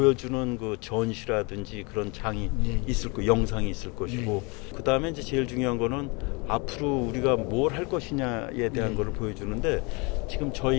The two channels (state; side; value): quieter; right; 29.3 dB